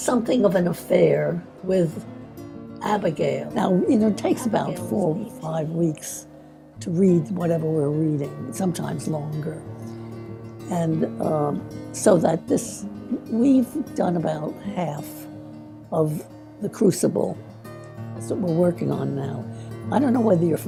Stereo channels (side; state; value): both; identical; correlation 1.00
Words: of an affair with Abigail. Now, it takes about 4 or 5 weeks to read whatever we're reading, sometimes longer. And so that we've done about half of The Crucible. That's what we're working on now. I don't know whether you're